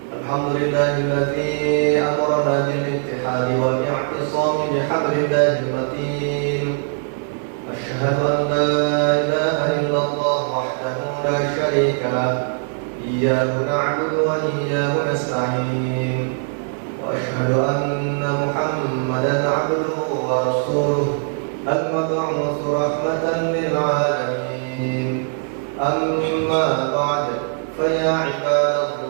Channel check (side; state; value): left; silent; 60 dB below the other